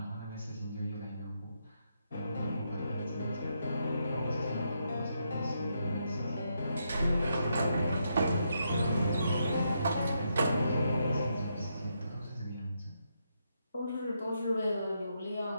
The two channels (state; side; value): inverted; both; correlation -0.80